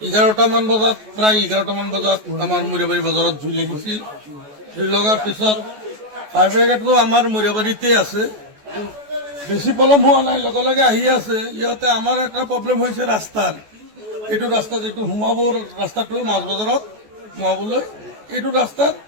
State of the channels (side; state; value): left; late; 14 ms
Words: 11টামান বজাত প্ৰায় 11টামান বজাত আমাৰ মৰিয়াবাৰী বজাৰত জুই লাগিছিল। জুই লগাৰ পিছত ফায়াৰ ব্ৰিগেডটো আমাৰ মৰিয়াবাৰীতে আছে, বেছি পলম হোৱা নাই, লগে লগে আহি আছে। ইহঁতে আমাৰ এটা প্ৰব্লেম হৈছে ৰাস্তাৰ, এইটো ৰাস্তাত এইটো সোমাব ৰাস্তাটো মাছ বজাৰত সোমাবলৈ, এইটো ৰাস্তাত